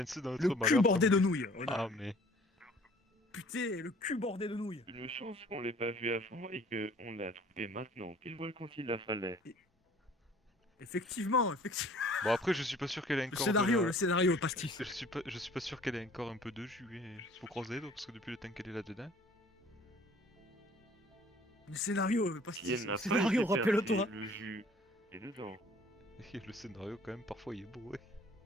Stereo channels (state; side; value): normal; both; correlation 0.53